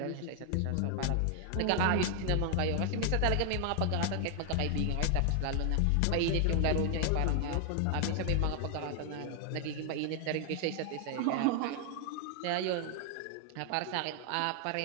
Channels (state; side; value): different; both; correlation 0.00